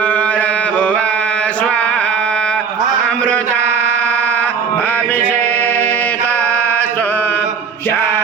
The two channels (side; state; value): left; quieter; 6.1 dB